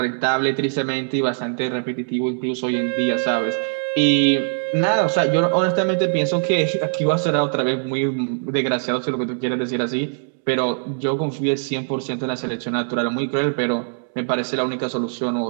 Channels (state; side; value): silent; left; 64 dB below the other